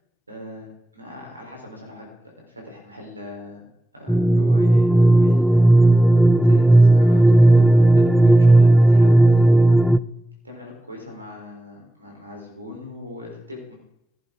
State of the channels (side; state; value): both; normal; correlation 0.97